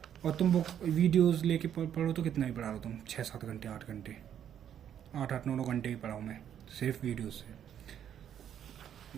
और तुम बुक वीडियोस लेके पढ़ो तो कितना भी पढ़ा लो तुम, 6-7 घंटे, 8 घंटे, 8-9 घंटे भी पढ़ाऊँ मैं सिर्फ वीडियोस से।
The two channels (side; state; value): left; quieter; 9.6 dB